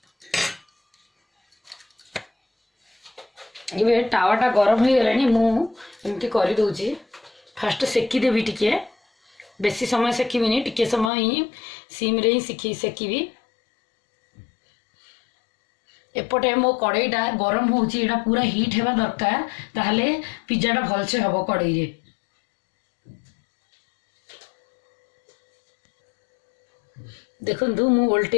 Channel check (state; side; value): drops out; right; at 11.1 s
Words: एबे टावाटा गरम हो गलानी मु एमती करि दोची फास्ट सेकी देबी टिके बेसी समय सेकीबिनी टिके समय ही सिम रे ही सेकीबी एपटे मो कड़ईटा गरम होची एटा पूरा हीट हेबा दरकार ताहले पिज्जाटा भलसे हबो कड़ई रे देखंतु मु